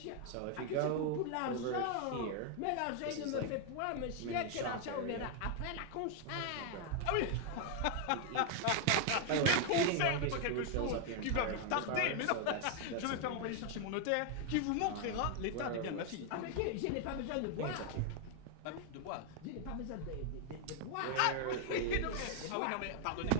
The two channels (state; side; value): different; both; correlation 0.00